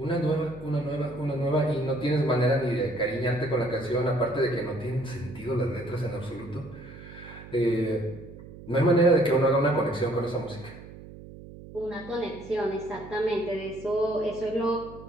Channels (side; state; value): right; noise; hum, 16 dB below the sound